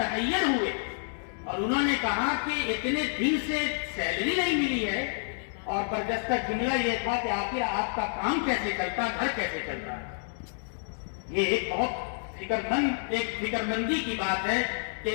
ہوئے اور انہوں نے کہا کہ اتنے دن سے سیلری نہیں ملی ہے، اور برجستہ جملہ یہ تھا کہ آخر آپ کا کام کیسے چلتا، گھر کیسے چلتا ہے۔ یہ ایک بہت ایک فکرمندی کی بات ہے کہ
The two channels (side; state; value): right; silent; digital silence